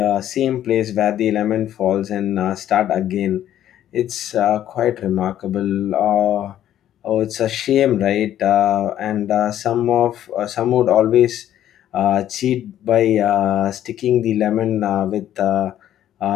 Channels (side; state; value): right; quieter; 11.6 dB